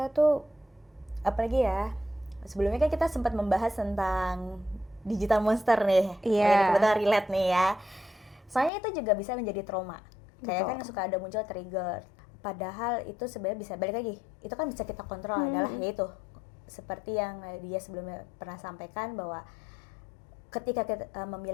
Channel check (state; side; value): drops out; right; at 8.7 s